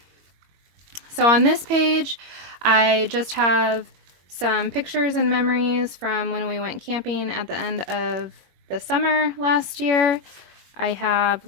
So on this page, I just have some pictures and memories from when we went camping at the end of the summer last year. I have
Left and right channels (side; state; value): left; late; 21 ms